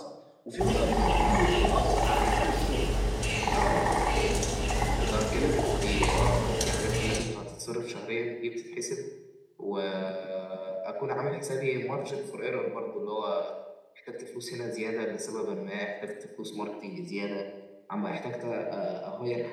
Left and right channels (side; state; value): both; identical; correlation 1.00